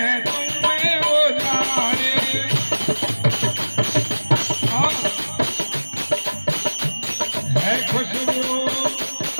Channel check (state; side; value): inverted; both; correlation -1.00